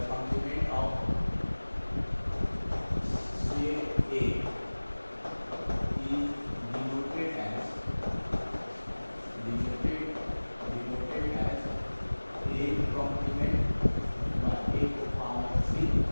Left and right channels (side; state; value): both; inverted; correlation -1.00